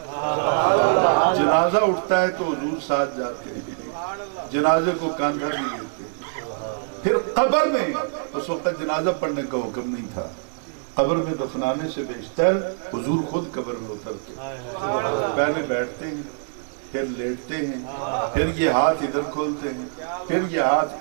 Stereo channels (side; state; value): left; silent; 63 dB below the other